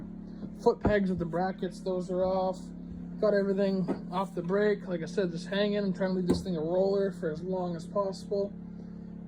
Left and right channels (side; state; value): both; identical; correlation 1.00